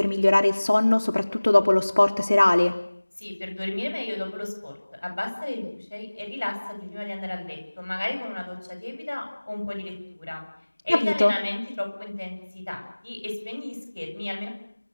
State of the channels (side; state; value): both; inverted; correlation -1.00